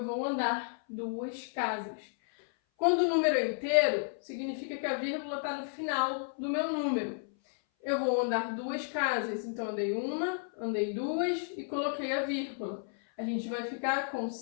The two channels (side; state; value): right; silent; 56 dB below the other